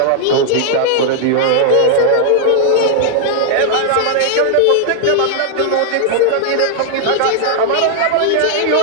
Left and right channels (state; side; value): different; both; correlation -0.01